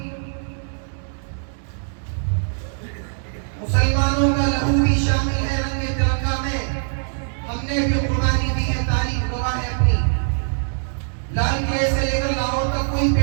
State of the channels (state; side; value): silent; left; digital silence